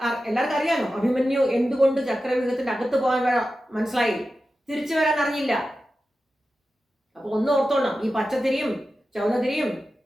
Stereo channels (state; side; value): normal; both; correlation 0.93